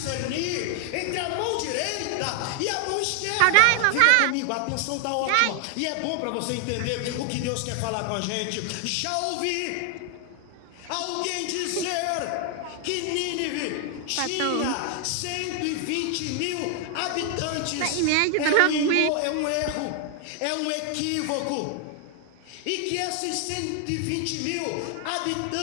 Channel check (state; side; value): different; both; correlation 0.00